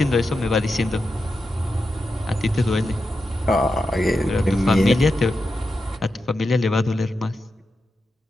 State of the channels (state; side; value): normal; both; correlation 0.89